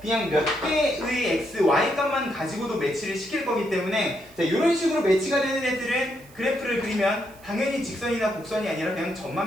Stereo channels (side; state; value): right; noise; hiss, 25 dB below the sound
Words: 그냥 몇 개의 x, y 값만 가지고도 매치를 시킬 거기 때문에, 자, 이런 식으로 매치가 되는 애들은 그래프를 그리면 당연히 직선이나 곡선이 아니라 그냥